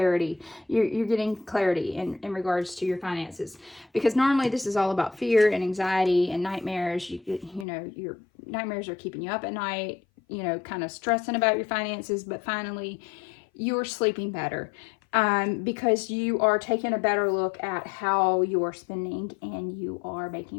You're getting clarity in regards to your finances, because normally this is all about fear and anxiety and nightmares. You know, your nightmares are keeping you up at night, you know, kind of stressing about your finances, but finally you're sleeping better because you are taking a better look at how you're spending and you are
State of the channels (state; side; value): drops out; right; at 7.7 s